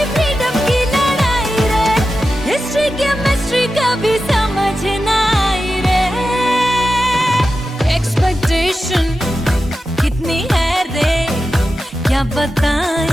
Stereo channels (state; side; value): normal; both; correlation 0.92